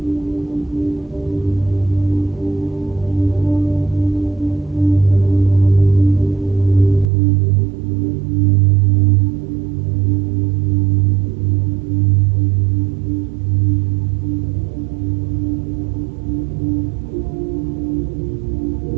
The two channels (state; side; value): drops out; left; at 7.1 s